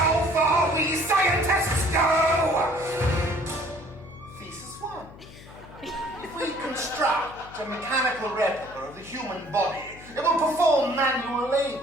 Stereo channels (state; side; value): noise; left; hum, 19 dB below the sound